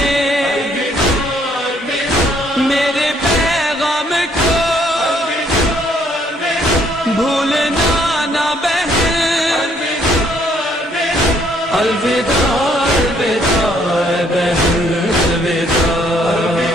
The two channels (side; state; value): both; normal; correlation 0.66